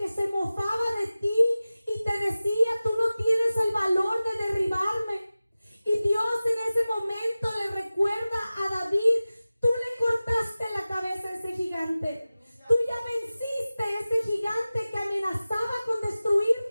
se mofaba de ti y te decía: tú no tienes el valor de derribarme. Y Dios en ese momento le recuerda a David: tú le cortaste la cabeza a ese gigante. Tú ya venciste ese gigante que amenazaba con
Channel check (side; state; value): both; inverted; correlation -0.97